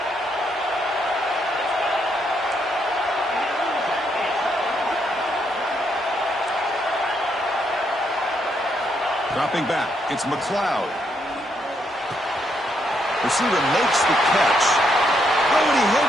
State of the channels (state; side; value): normal; both; correlation 0.76